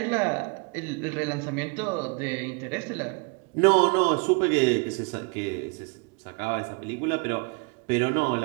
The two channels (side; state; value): left; quieter; 31.5 dB